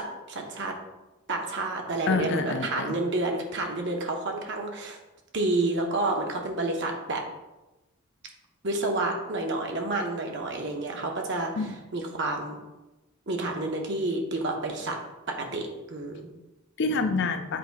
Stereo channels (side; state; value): both; normal; correlation 0.17